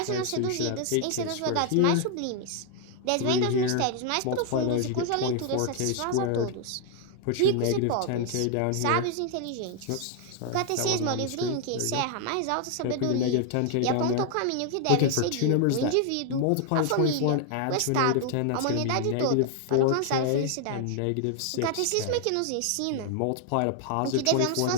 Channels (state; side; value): different; both; correlation 0.00